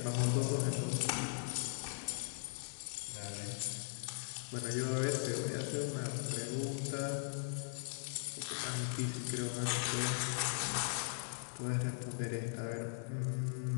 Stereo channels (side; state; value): right; silent; digital silence